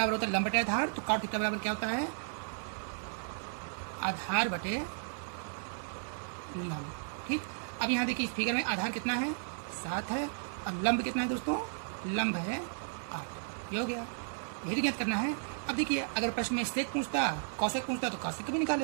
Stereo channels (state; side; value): silent; left; digital silence